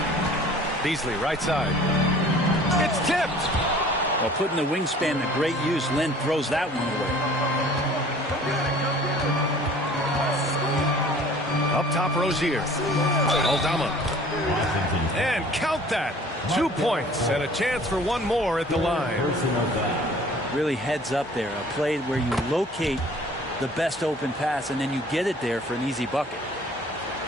Beasley, right side. It's tipped. Well, putting the wingspan to great use, Lynn throws that one away. Up top, Rozier. Aldama. And count that. 2 points and a chance for one more at the line. Really heads up there. A play where you locate the best open pass and then you get it there for an easy bucket.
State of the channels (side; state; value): both; normal; correlation 0.50